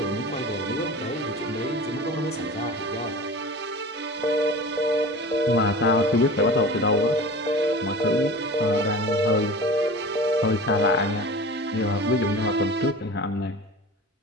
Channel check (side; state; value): both; normal; correlation 0.37